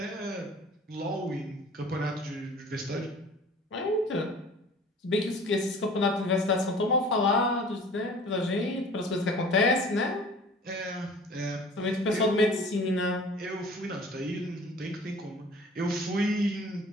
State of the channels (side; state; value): both; normal; correlation 0.46